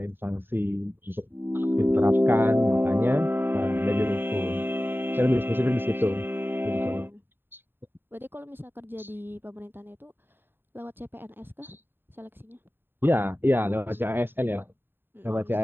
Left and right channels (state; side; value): late; left; 0.099 ms